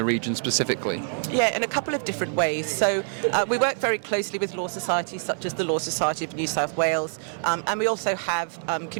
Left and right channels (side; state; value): left; silent; 61 dB below the other